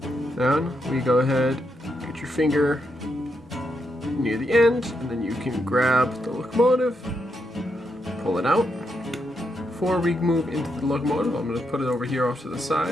Then we go ahead, get your finger near the end, and then you can grab the locomotive, pull it out. Before we move into the locomotive, I'm going to put it over here off to the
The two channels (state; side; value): normal; both; correlation 0.81